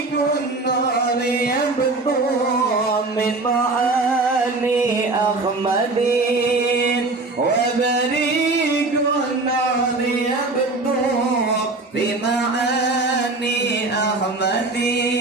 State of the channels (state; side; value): quieter; left; 3.3 dB